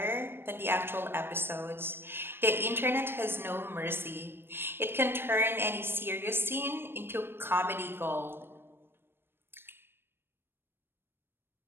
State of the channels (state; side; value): late; left; 0.11 ms